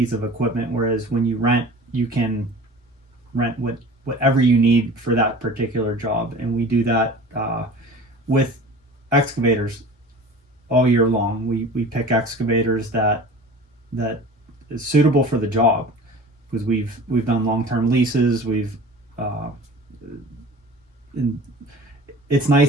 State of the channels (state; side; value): normal; both; correlation 0.40